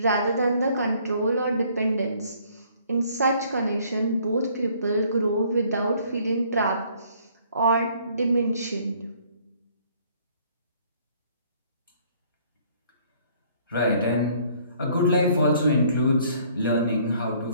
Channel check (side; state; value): both; inverted; correlation -0.61